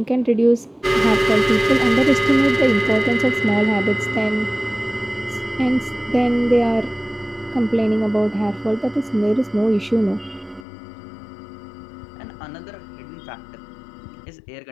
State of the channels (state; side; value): drops out; right; at 10.7 s